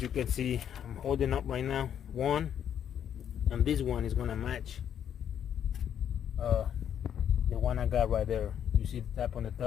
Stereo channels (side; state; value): right; quieter; 9.2 dB